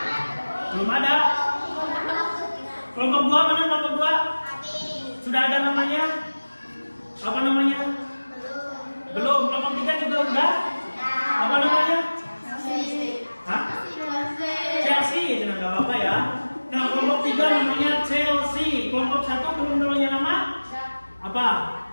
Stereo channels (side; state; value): both; inverted; correlation -1.00